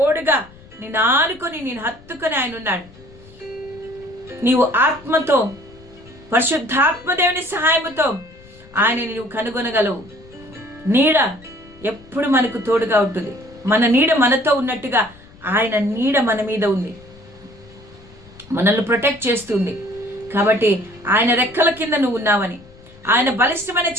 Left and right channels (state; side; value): noise; left; rumble, 23 dB below the sound